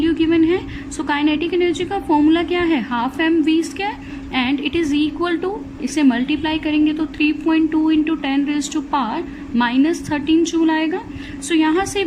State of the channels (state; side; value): identical; both; correlation 1.00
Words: गिवन है. सो काइनेटिक एनर्जी का फॉर्मूला क्या है? Half mv² and it is equal to, इसे मल्टीप्लाई करेंगे तो 3.2 इंटू 10⁻⁻13 जूल आएगा. सो यहाँ से